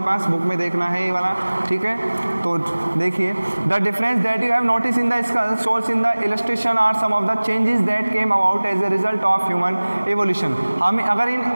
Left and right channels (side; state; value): both; inverted; correlation -1.00